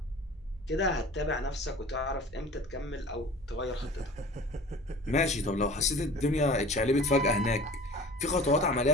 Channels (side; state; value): both; normal; correlation 0.43